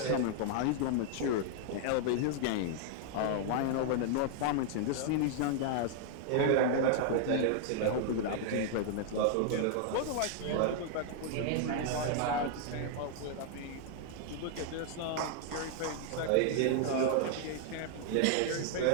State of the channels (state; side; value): different; both; correlation 0.00